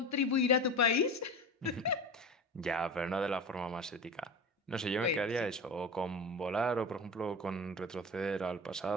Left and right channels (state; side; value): normal; both; correlation 0.30